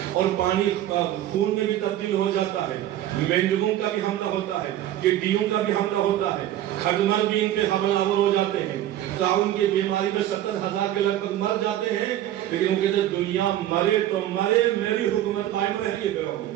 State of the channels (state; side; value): quieter; left; 12.7 dB